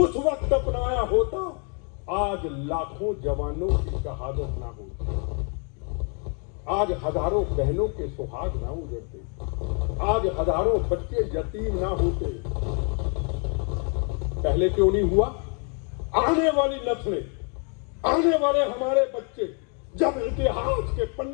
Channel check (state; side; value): quieter; right; 39.2 dB